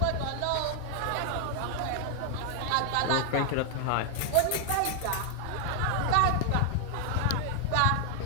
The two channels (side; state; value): both; different; correlation 0.00